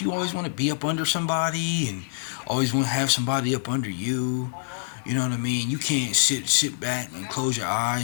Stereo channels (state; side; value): silent; right; digital silence